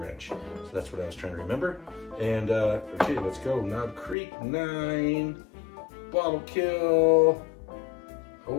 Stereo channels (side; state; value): right; drops out; at 4.2 s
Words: So that's what I was trying to remember. And okay, let's go. Knob Creek 9, bottle kill.